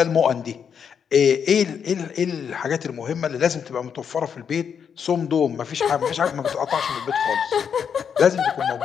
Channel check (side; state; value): right; quieter; 7.3 dB